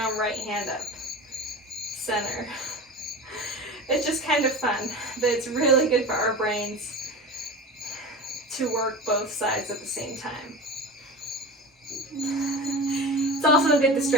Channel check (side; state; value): both; normal; correlation 0.31